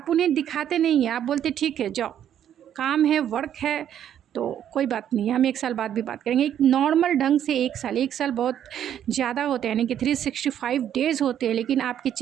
उन्हें दिखाते नहीं हैं, आप बोलते ठीक है जाओ, काम है, वर्क है, तो कोई बात नहीं है, हम 1 साल बाद भी बात करेंगे। एक नॉर्मल ढंग से 1 साल बहुत ज़्यादा होते हैं, यानी कि 365 डेज़ होते हैं, लेकिन आपके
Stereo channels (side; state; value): left; quieter; 10.1 dB